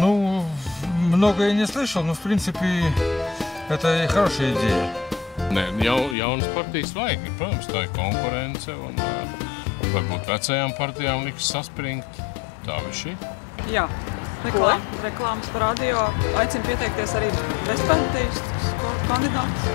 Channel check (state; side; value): drops out; right; at 6.2 s